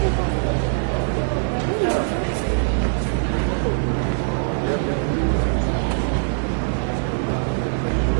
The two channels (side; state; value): left; silent; digital silence